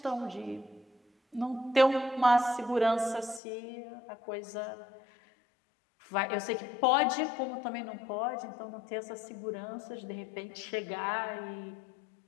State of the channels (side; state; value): right; drops out; at 3.4 s